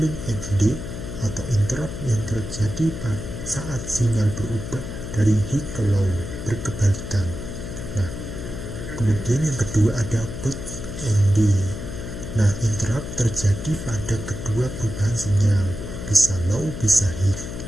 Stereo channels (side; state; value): left; noise; hum, 7 dB below the sound